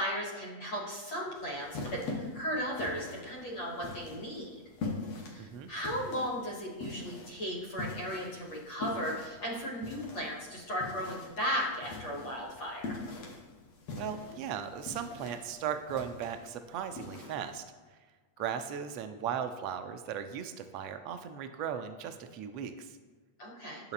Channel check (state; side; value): late; right; 8.4 ms